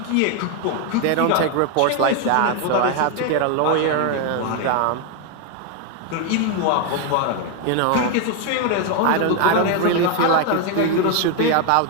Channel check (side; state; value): both; different; correlation 0.01